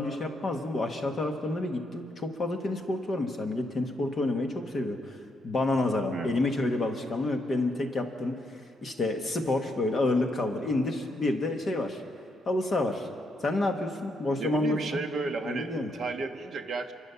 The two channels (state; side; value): normal; both; correlation 0.77